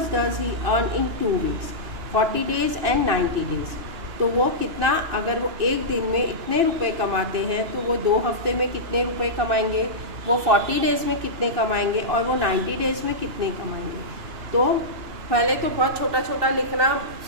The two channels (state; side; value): late; left; 2.9 ms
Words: does he earn in 2 weeks, 40 days and 90 days? तो वो कितना, अगर वो एक दिन में इतने रुपए कमाते हैं तो वो 2 हफ्ते में कितने रुपए कमाएंगे, वो 40 डेज में कितने कमाएंगे और वो 90 डेज में कितने कमाएंगे। तो पहले तो बहुत छोटा छोटा लिखना,